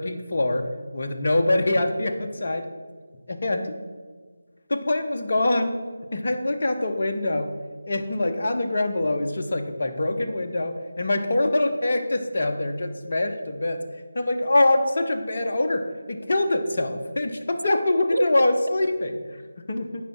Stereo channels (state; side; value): inverted; both; correlation -0.96